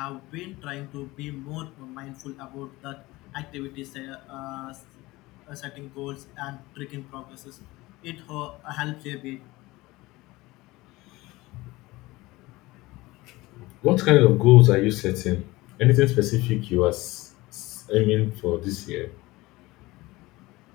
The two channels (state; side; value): quieter; right; 20.3 dB